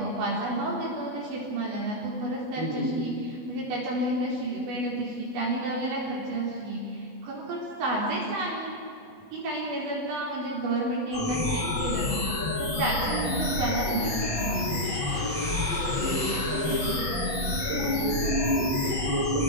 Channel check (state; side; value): late; left; 8.2 ms